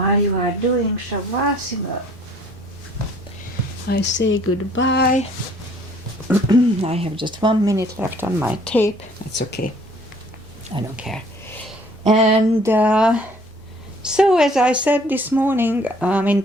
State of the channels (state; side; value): normal; both; correlation 0.57